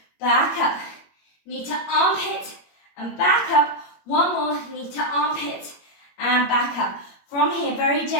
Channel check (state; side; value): late; right; 21 ms